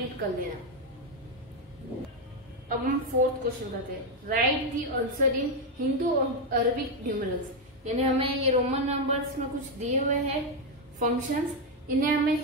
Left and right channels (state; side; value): normal; both; correlation 0.04